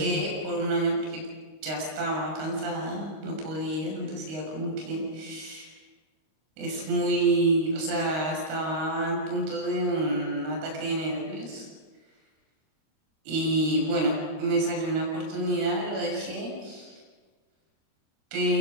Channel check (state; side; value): late; left; 26 ms